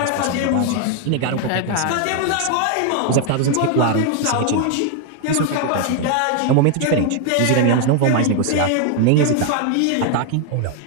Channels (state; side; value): different; both; correlation 0.00